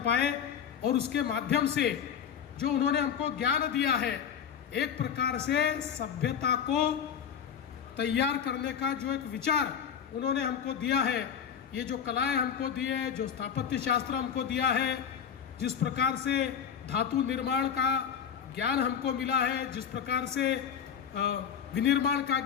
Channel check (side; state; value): right; quieter; 8.0 dB